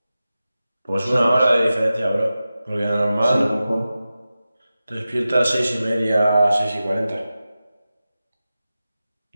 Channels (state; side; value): inverted; both; correlation -0.94